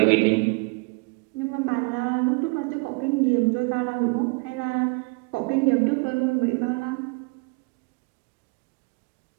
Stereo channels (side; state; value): left; quieter; 30.6 dB